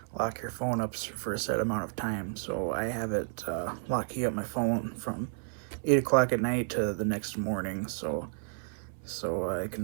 lock your phone up for a set amount of time. So I have it locking up my phone from 8 o'clock at night to the next morning, so I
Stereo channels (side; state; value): left; silent; 57 dB below the other